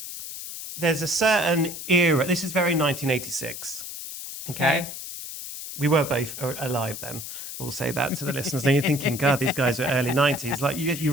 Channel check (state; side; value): noise; left; hiss, 9 dB below the sound